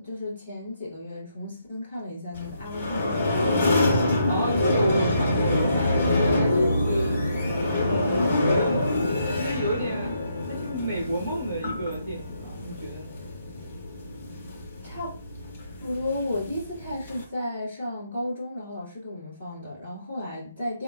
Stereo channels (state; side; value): inverted; both; correlation -0.76